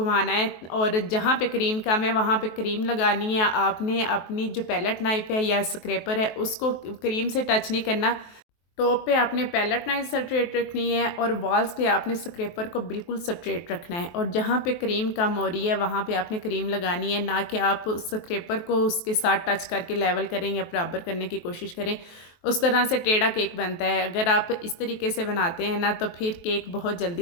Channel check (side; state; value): right; late; 23 ms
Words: है। और जहाँ पे क्रीम कम है वहाँ पे क्रीम लगानी है। आपने अपनी जो पैलेट नाइफ़ है या स्क्रैपर है उसको क्रीम से टच नहीं करना। टॉप पे आपने पैलेट नाइफ स्ट्रेट रखनी है और वॉल्स पे आपने स्क्रैपर को बिल्कुल स्ट्रेट रखना है। और जहाँ पे क्रीम कम हो रही है वहाँ पे आपने क्रीम लगानी है, ना कि आप स्क्रैपर को उसके साथ टच करके लेवल करें या बराबर करने की कोशिश करें। उस तरह से टेढ़ा केक बनता है। अगर आप इस तरीके से बनाते हैं ना तो फिर केक बहुत